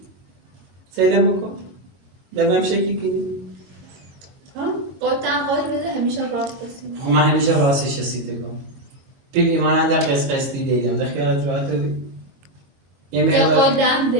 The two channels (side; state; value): left; late; 22 ms